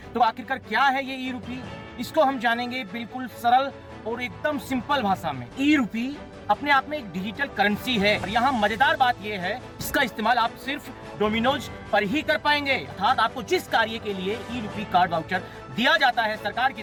तो आखिरकार क्या है ये ई रूपी, इसको हम जानेंगे बिल्कुल सरल और एकदम सिंपल भाषा में। ई रूपी अपने आप में एक डिजिटल करेंसी है और यहाँ मजेदार बात यह है, इसका इस्तेमाल आप सिर्फ डोमिनोज पर ही कर पाएंगे। अर्थात आपको जिस कार्य के लिए ई रूपी कार्ड वाउचर दिया जाता है सरकार की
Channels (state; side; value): identical; both; correlation 1.00